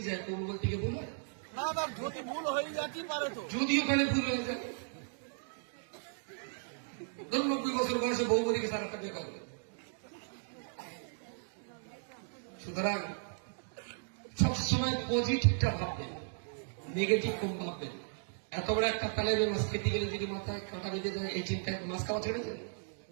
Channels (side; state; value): left; silent; digital silence